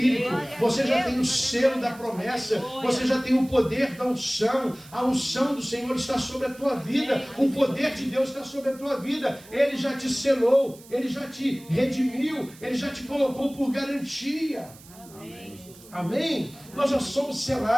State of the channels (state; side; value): noise; right; hiss, 22 dB below the sound